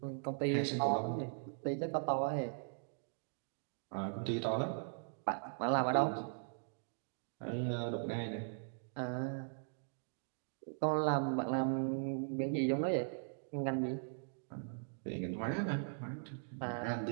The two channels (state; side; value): silent; left; digital silence